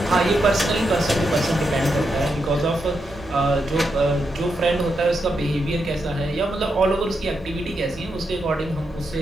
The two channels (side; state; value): both; normal; correlation 0.84